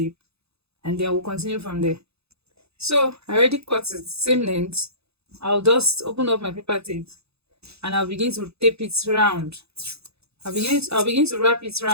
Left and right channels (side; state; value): left; late; 0.79 ms